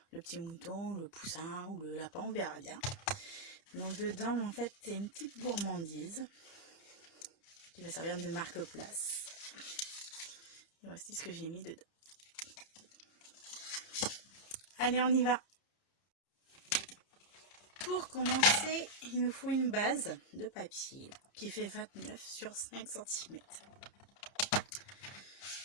le petit mouton, le poussin ou le lapin, on verra bien. Donc dedans en fait c'est une petite gourmandise qui va servir de marque-place. Et voici ce que j'ai mis dedans. Allez, on y va. Pour commencer, il nous faut une base de papier qui fait 29 sur 5 cm.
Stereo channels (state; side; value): late; right; 30 ms